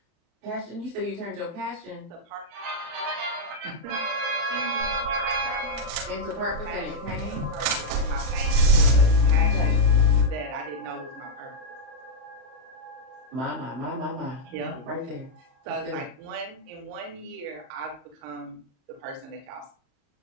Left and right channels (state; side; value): late; left; 34 ms